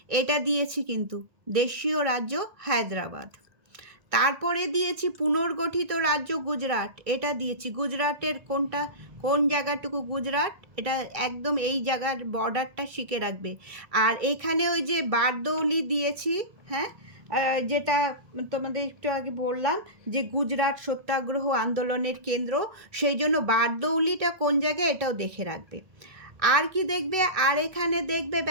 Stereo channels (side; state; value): left; late; 1.6 ms